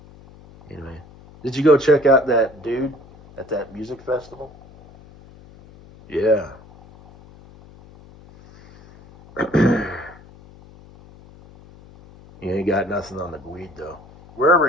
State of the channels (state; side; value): noise; left; hum, 23 dB below the sound